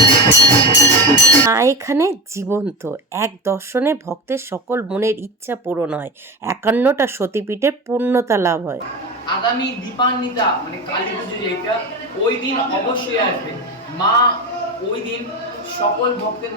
মা এখানে জীবন্ত, এক দর্শনে ভক্তের সকল মনের ইচ্ছা পূরণ হয়, 51টা সতীপীঠের পূর্ণতা লাভ হয়। আগামী দীপান্বিতা মানে কালী পুজো যেটা, ওই দিন অবশ্যই আসবে মা। ওই দিন সকল ভক্তের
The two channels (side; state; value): both; normal; correlation 0.22